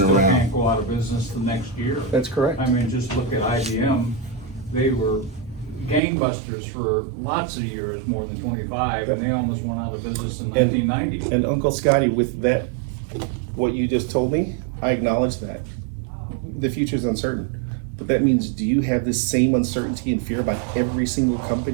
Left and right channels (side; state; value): left; drops out; at 6.0 s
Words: around. can't go out of business the next year. That's correct. I mean, just look at IBM, they were gangbusters for lots of years, more than 25, Yep. and they almost went out of business in And- 1990. And Uncle Scotty, with that, what you just told me, I acknowledge that. The future's uncertain. But that means, do you have this same uncertainty and fear about every single